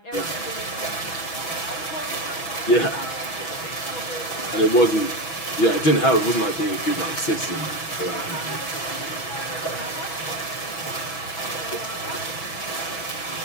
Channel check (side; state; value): right; late; 6.1 ms